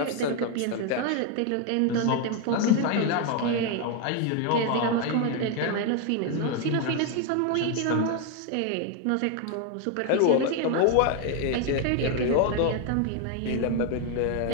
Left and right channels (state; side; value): different; both; correlation 0.01